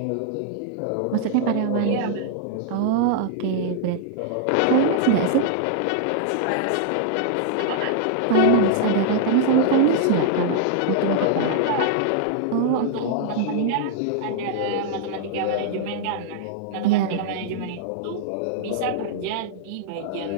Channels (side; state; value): both; different; correlation -0.01